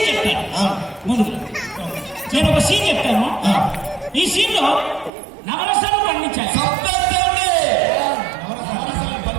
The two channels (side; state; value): left; drops out; at 5.1 s